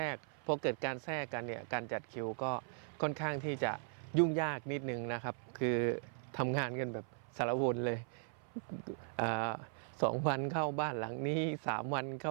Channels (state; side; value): silent; left; 52 dB below the other